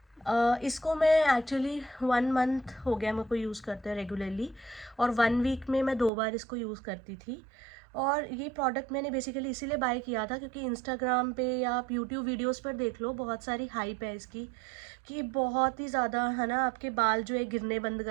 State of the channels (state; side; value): drops out; left; at 6.1 s